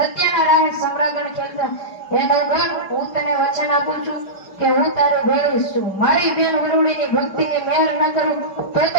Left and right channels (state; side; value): late; right; 5.2 ms